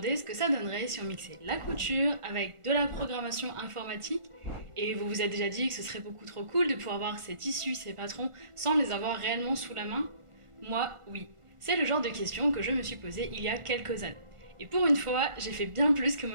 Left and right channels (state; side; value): late; left; 1.5 ms